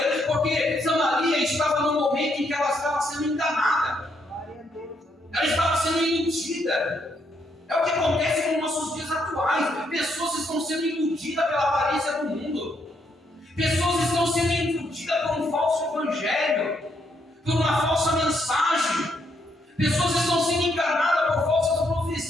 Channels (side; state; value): both; normal; correlation 0.75